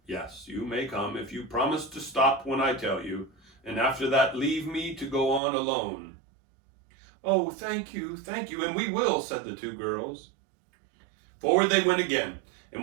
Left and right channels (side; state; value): left; drops out; at 5.4 s